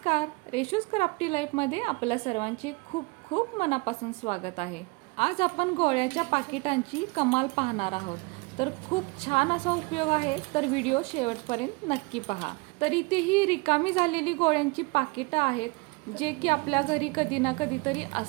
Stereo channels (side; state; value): left; quieter; 27.1 dB